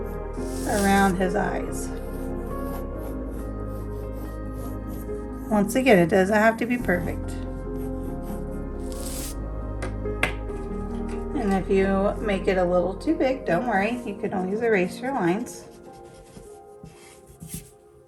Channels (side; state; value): both; identical; correlation 1.00